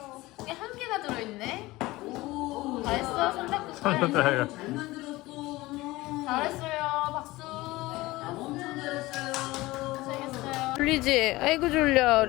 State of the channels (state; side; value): quieter; right; 19.5 dB